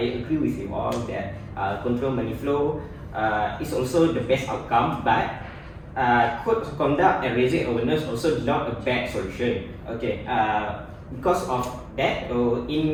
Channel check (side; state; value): both; identical; correlation 1.00